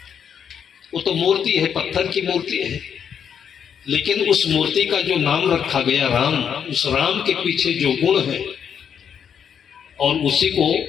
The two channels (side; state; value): right; quieter; 7.9 dB